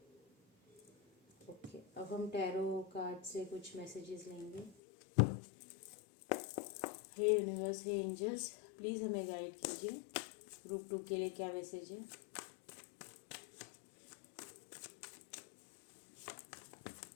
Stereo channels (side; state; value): right; drops out; at 4.8 s